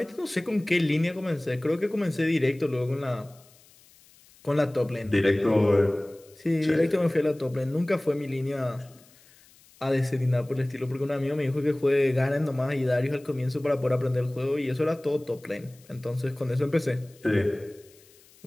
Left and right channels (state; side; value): noise; left; hiss, 27 dB below the sound